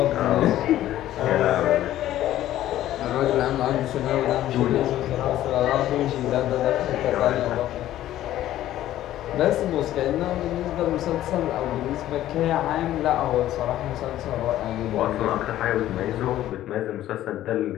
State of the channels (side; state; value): right; quieter; 13.4 dB